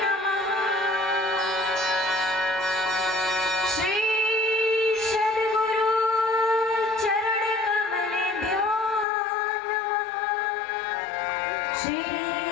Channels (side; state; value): right; drops out; at 9.1 s